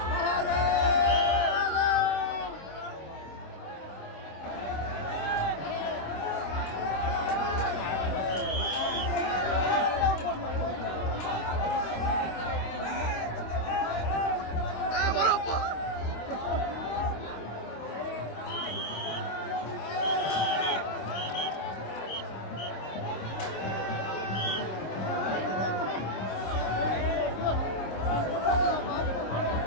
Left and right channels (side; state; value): right; late; 26 ms